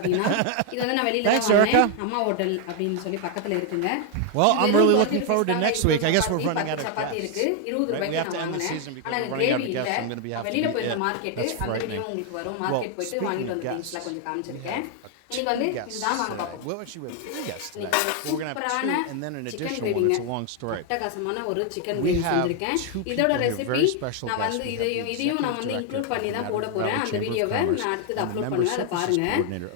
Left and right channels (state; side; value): different; both; correlation 0.00